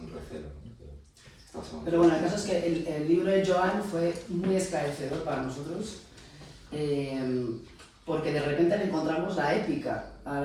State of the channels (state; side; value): identical; both; correlation 1.00